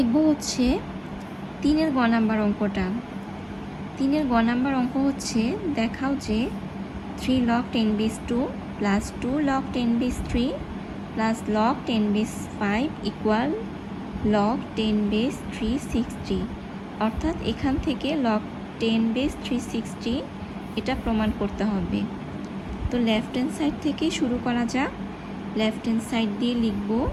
হচ্ছে 3-এর গ নাম্বার অঙ্কটা। 3-এর গ নাম্বার অঙ্ক হচ্ছে, দেখাও যে 3 log 10 base 2 plus 2 log 10 base 3 plus log 10 base 5 equal log 10 base 360। অর্থাৎ এখান থেকে log 10 base 360 এটা প্রমাণ করতে হবে। তো লেফট হ্যান্ড সাইড থেকে শুরু করা যাক। লেফট হ্যান্ড সাইড দিয়ে লিখব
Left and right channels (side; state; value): both; identical; correlation 1.00